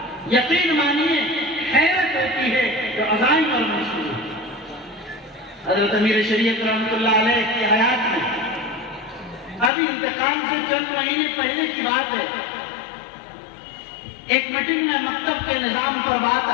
یقین مانیے حیرت ہوتی ہے جو عزائم اور منصوبے۔ حضرت امیر شریعت رحمۃ اللہ علیہ کی حیات میں ابھی انتقال سے چند مہینے پہلے کی بات ہے، ایک میٹنگ میں مکتب کے نظام پر بات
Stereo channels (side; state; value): right; drops out; at 9.7 s